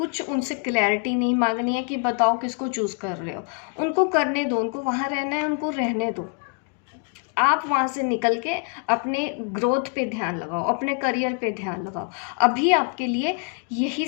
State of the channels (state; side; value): quieter; right; 36.8 dB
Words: उनसे क्लैरिटी नहीं मांगनी है कि बताओ किसको चूज कर रहे हो। उनको करने दो, उनको वहाँ रहना है, उनको रहने दो। आप वहाँ से निकल के अपने ग्रोथ पे ध्यान लगाओ, अपने करियर पे ध्यान लगाओ। अभी आपके लिए यही